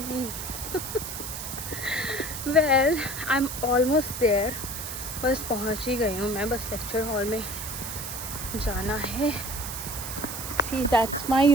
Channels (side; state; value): right; noise; hiss, 7 dB below the sound